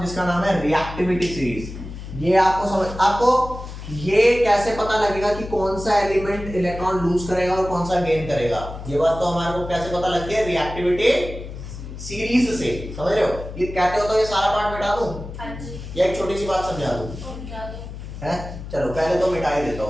जिसका नाम है रिएक्टिविटी सीरीज। ये आपको ये कैसे पता लगेगा कि कौन सा एलिमेंट इलेक्ट्रॉन लूज करेगा और कौन सा गेन करेगा? ये बात तो हमारे को कैसे पता लग गया? रिएक्टिविटी सीरीज से। समझ रहे हो? ये कहते हो तो ये सारा पार्ट मिटा दूं? हाँ जी। या एक छोटी सी बात समझा दूं? समझा दो। है? चलो पहले तो मिटा ही देता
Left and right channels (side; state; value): left; noise; hum, 11 dB below the sound